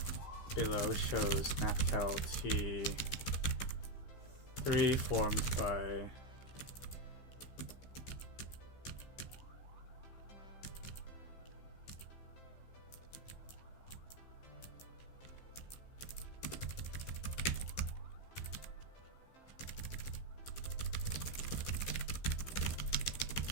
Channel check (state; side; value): late; right; 15 ms